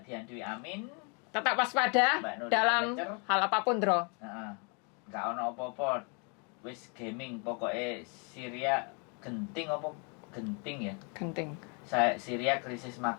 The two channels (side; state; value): right; quieter; 35.5 dB